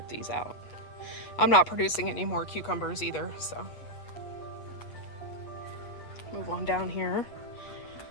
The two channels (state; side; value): late; right; 8.4 ms